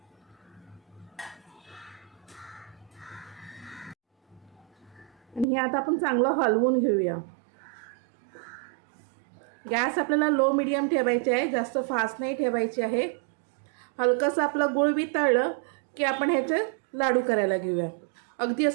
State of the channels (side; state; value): left; drops out; at 5.5 s